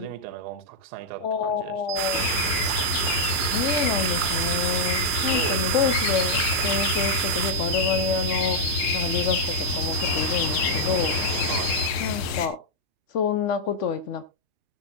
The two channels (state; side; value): late; right; 2.4 ms